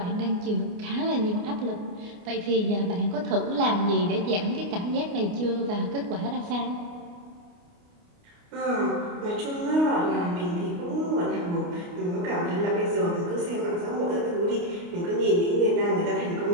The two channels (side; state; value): left; late; 29 ms